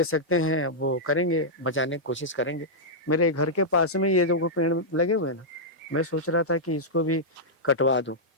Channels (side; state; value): both; normal; correlation -0.09